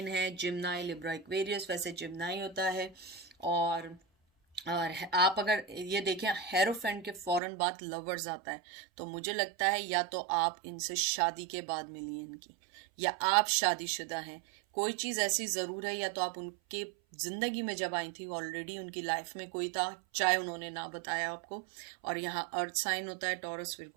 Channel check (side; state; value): left; drops out; at 7.4 s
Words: है, जिम्नाई, लिब्रा, एक्वेरियस। वैसे जिम्नाई होता है। और आप अगर ये देखें, हेरोफेंट के फौरन बाद लवर्स आता है, तो मुझे लगता है या तो आप इनसे शादी के बाद मिली हैं इनकी, या आप शादीशुदा हैं। कोई चीज़ ऐसी ज़रूर है, या तो आप उनके ज़िंदगी में जब आई थी ऑलरेडी उनकी लाइफ में कोई था, चाहे उन्होंने ना बताया आपको। और यहाँ अर्थ साइन होता है, टॉरस,